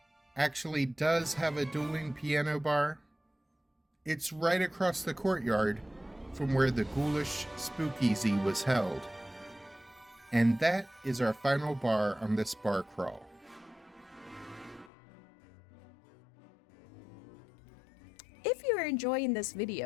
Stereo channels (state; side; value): drops out; right; at 14.9 s